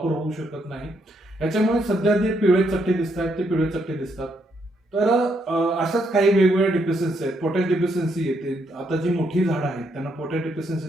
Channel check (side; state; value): both; normal; correlation 0.75